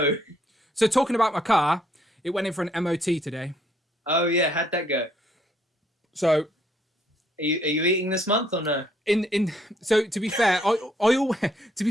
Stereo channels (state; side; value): normal; both; correlation 0.68